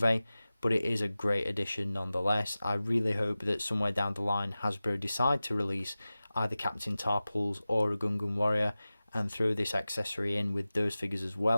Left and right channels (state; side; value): inverted; both; correlation -0.97